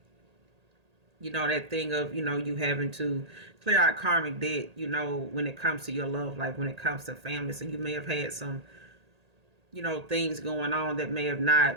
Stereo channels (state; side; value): late; left; 1.8 ms